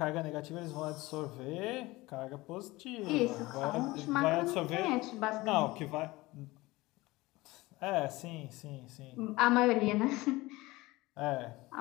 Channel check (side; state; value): right; quieter; 20.5 dB